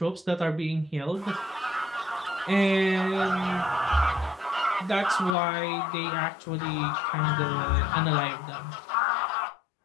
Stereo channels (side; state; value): right; drops out; at 5.4 s